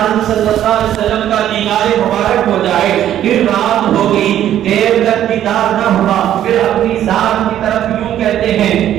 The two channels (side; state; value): left; quieter; 11.4 dB